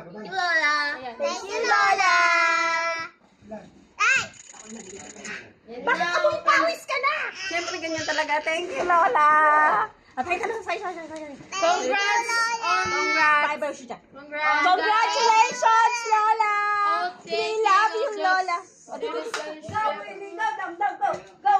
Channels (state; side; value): identical; both; correlation 1.00